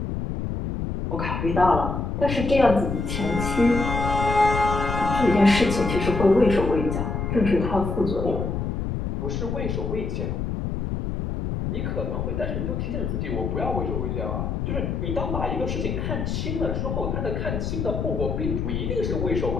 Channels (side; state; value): left; noise; rumble, 2 dB below the sound